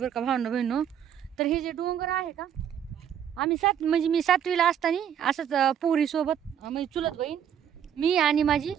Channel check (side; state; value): left; quieter; 9.2 dB